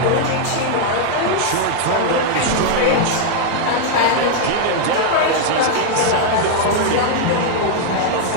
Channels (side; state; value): both; different; correlation 0.00